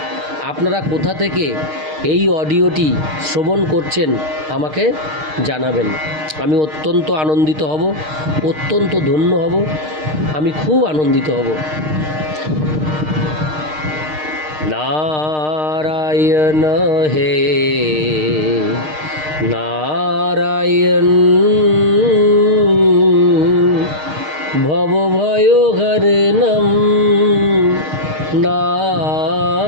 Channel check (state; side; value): late; left; 6.5 ms